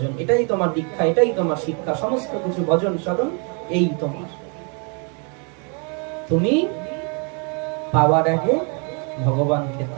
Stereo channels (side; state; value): left; quieter; 36.8 dB